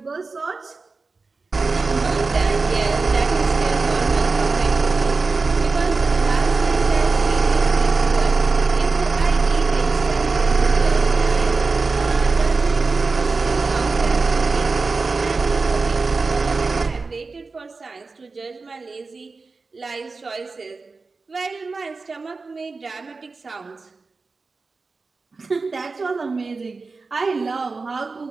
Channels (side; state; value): left; quieter; 4.1 dB